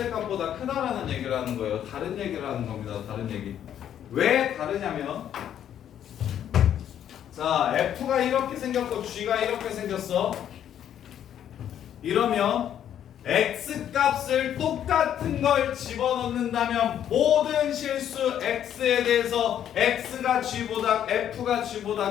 크다라는 얘기를 하는 거예요. 다른 얘기를 하는 겁니다. 다른 얘기. 왜 다르냐면, 자, f가 이렇게 생겼고 g가 이렇게 생겼어. 이러면 x 값을 똑같은 걸 집어넣는다면 모든 실수 x에 대해서 x가 g보다 f가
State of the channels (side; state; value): right; quieter; 10.1 dB